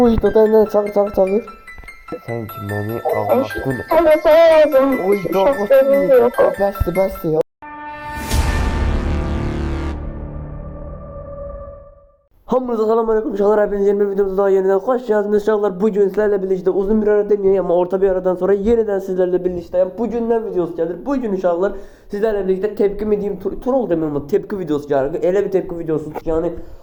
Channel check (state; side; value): identical; both; correlation 1.00